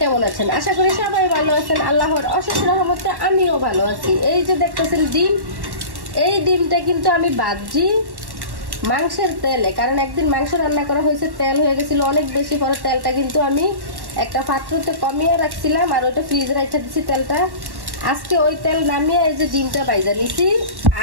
কেমন আছেন? আশা করি সবাই ভালো আছেন। আল্লাহর অশেষ রহমতে আমিও ভালো আছি। এই যে দেখতেছেন ডিম, এই ডিমটা কিন্তু আমি ভাজি মাংসের তেলে, কারণ একদিন মাংস রান্না করা হয়েছে, তেল হয়ে গেছিল অনেক বেশি। পরে তেলটা কিন্তু আমি একটা পাত্রতে কমিয়ে রাখছিলাম আর ওটা ফ্রিজে রেখে দিচ্ছি তেলটা। আজকে ওই তেল নামিয়ে এই যে ডিমটা বাইজা নিছি,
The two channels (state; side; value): late; left; 1.1 ms